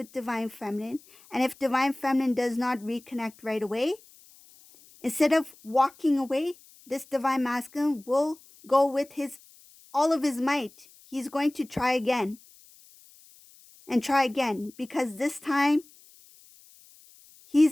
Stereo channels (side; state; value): left; noise; hiss, 26 dB below the sound